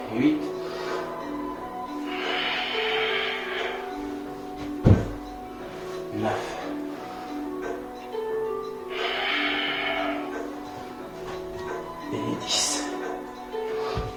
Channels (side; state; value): both; identical; correlation 1.00